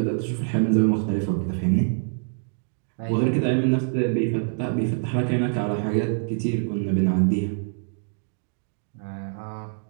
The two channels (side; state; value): left; silent; digital silence